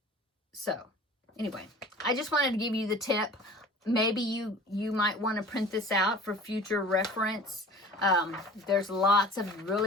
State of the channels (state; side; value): normal; both; correlation 0.43